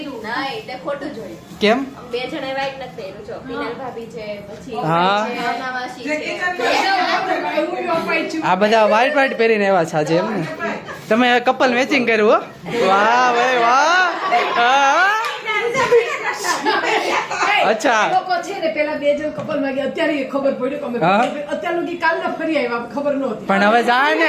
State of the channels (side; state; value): both; identical; correlation 1.00